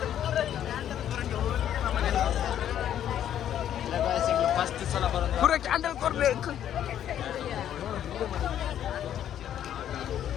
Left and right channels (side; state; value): right; quieter; 10.5 dB